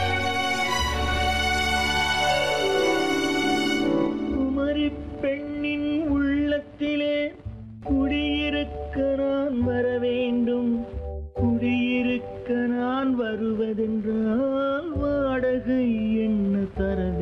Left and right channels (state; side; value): identical; both; correlation 1.00